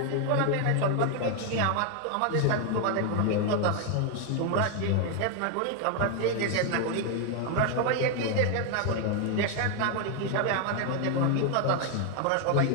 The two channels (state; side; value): different; both; correlation 0.00